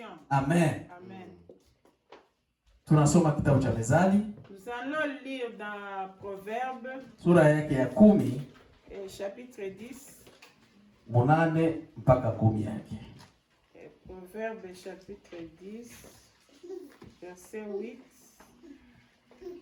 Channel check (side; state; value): both; identical; correlation 1.00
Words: Amen. Amen. Tunasoma kitabu cha Mezali Nous allons lire dans Proverbes, sura yake ya 10 chapitre 10. 8 mpaka 10 yake. Proverbes, chapitre 10, verset 8.